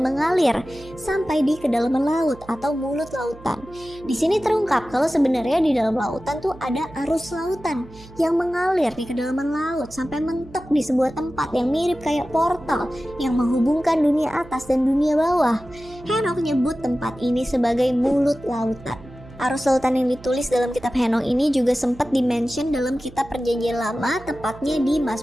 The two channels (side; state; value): right; noise; hum, 20 dB below the sound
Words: mengalir sampai di kedalaman laut atau mulut lautan. Di sini terungkap kalau sebenarnya di dalam lautan tuh ada arus lautan yang mengalir di kedalaman laut sampai mentok di sebuah tempat yang mirip kayak portal yang menghubungkan dunia atas dan dunia bawah. Henoch nyebut tempat ini sebagai mulut lautan. Arus lautan yang ditulis dalam kitab Henoch ini juga sempat dimention dalam kitab Perjanjian Lama, tepatnya di